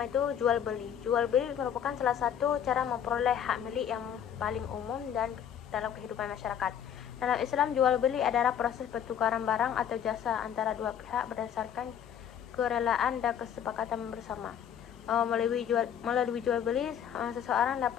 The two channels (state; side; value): quieter; right; 9.1 dB